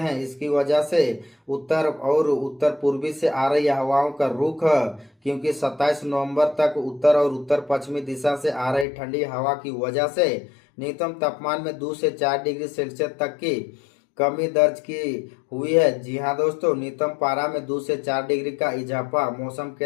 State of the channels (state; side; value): drops out; right; at 8.8 s